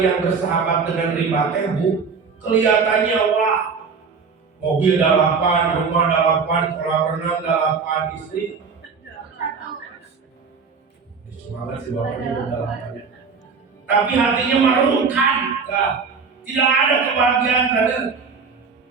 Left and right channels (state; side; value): quieter; left; 5.3 dB